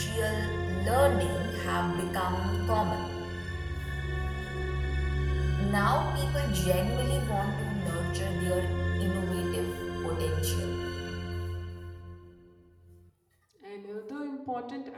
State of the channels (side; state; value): both; identical; correlation 1.00